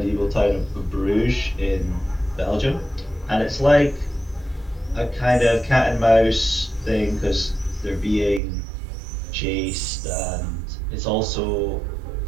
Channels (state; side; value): drops out; left; at 8.4 s